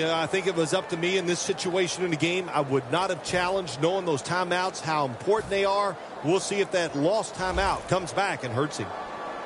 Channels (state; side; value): identical; both; correlation 1.00